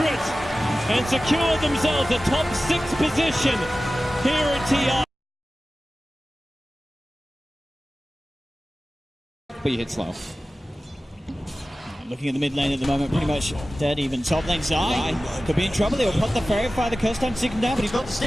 and secure themselves a top 6 position here at TI. But you hit slow. Looking at the mid lane at the moment, pretty much dead even. Top lane Zai could be in trouble. He'll put the Fairy Fire the curse time to take him down, but he's got the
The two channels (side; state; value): both; normal; correlation 0.96